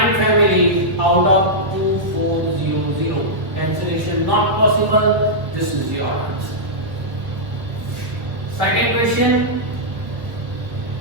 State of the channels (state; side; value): late; left; 1.1 ms